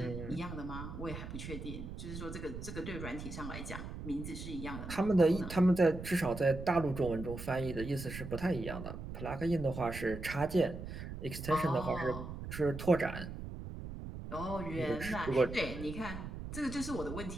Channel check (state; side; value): noise; right; rumble, 8 dB below the sound